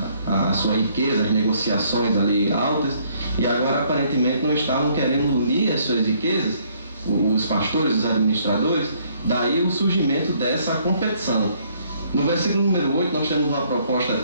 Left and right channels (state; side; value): inverted; both; correlation -0.66